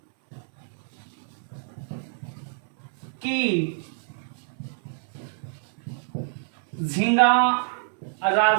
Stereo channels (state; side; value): silent; left; 61 dB below the other